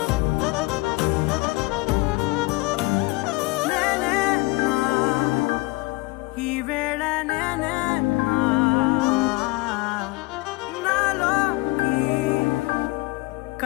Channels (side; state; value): right; quieter; 23.3 dB